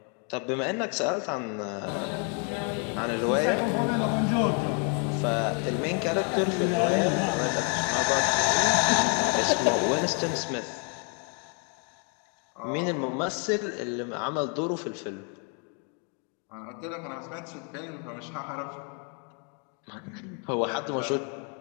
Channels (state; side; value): quieter; right; 38.7 dB